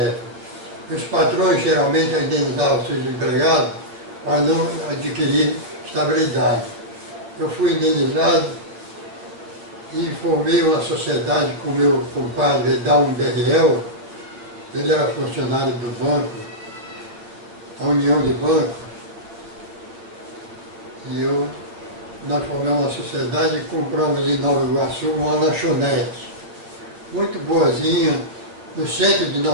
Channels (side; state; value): left; late; 8.9 ms